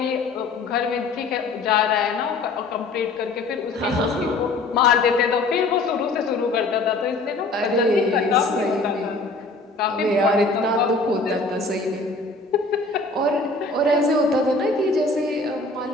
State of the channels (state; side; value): quieter; right; 3.3 dB